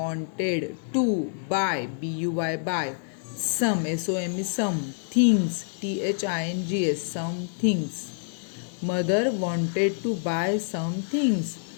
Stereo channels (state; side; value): silent; right; 60 dB below the other